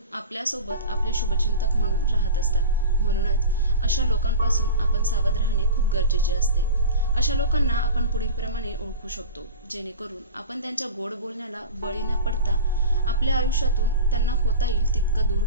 आपल्यासोबत आपले शुभचिंतक म्हणून राहत असतात. म्हणूनच अशा लोकांपासून आपण सावध राहणे खूप गरजेचे असते. अशा लोकांना आपण पुढीलप्रमाणे ओळखू शकतो, जेणेकरून आपण त्यांच्या गोड बोलण्याला बळी न पडता आपल्या आयुष्यातून त्यांना होता येईल तितकं दूर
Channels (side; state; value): both; inverted; correlation -0.32